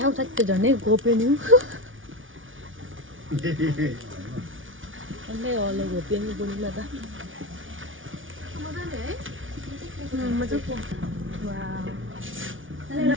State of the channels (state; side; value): late; left; 0.57 ms